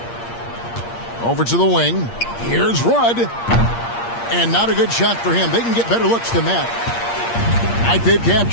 Over to the wing. Here's Rudd. And not a good shot for him. They can get better looks than that. I think they've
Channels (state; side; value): late; right; 8.6 ms